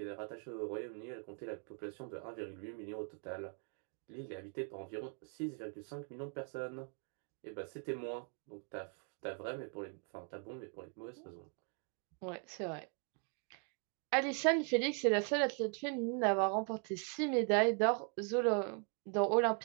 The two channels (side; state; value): left; quieter; 39.3 dB